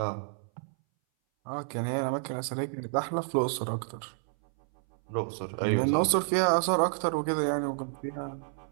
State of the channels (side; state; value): left; silent; 58 dB below the other